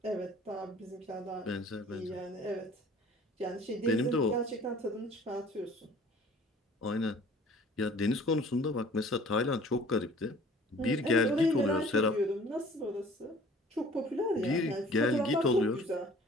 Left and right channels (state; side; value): normal; both; correlation 0.50